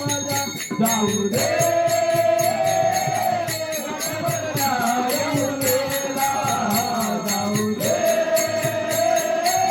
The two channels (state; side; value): identical; both; correlation 1.00